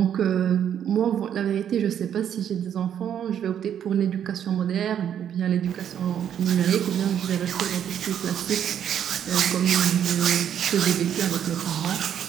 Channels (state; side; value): quieter; left; 9.3 dB